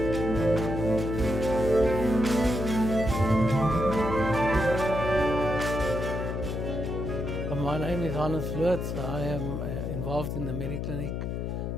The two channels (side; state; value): left; noise; hum, 3 dB below the sound